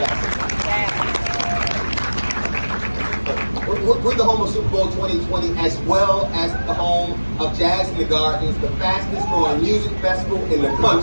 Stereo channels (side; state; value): both; inverted; correlation -1.00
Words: We're the home of Super Bowl 2020, as well as the home of Jazz in the Gardens, the fastest growing music festival in the